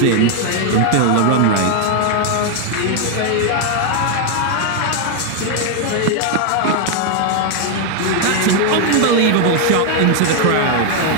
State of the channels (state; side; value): different; both; correlation 0.00